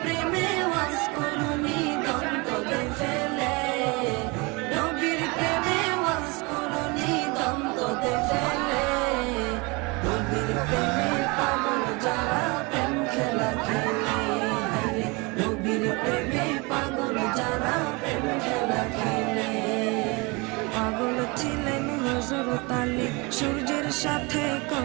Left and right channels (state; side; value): quieter; left; 27.4 dB